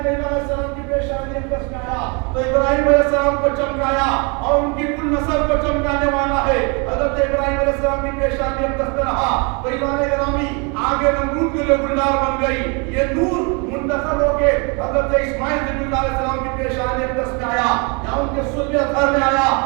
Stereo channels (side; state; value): left; quieter; 32.6 dB